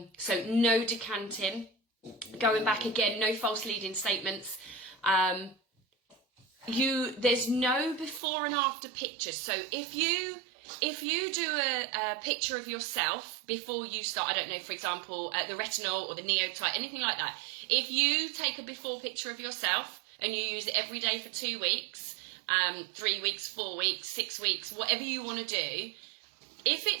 no decanting. Going back again, no false leading statements. There's no before and after pictures. So if you do a picture of yourself before you start, I don't know, for example, the retinol or the neotite, anything like that. If you take a before picture of yourself and you use it every day for 2 weeks, 3 weeks, 4 weeks, 6 weeks, whatever you want to do, if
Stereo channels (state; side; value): drops out; left; at 8.2 s